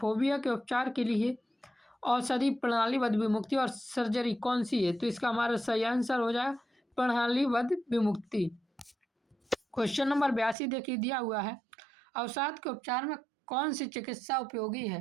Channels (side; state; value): left; drops out; at 10.6 s